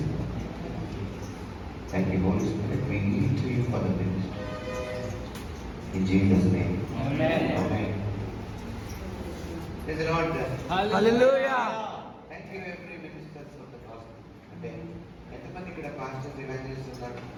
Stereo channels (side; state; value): both; identical; correlation 1.00